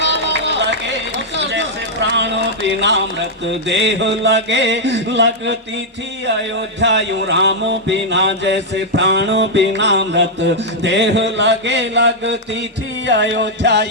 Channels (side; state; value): both; normal; correlation -0.04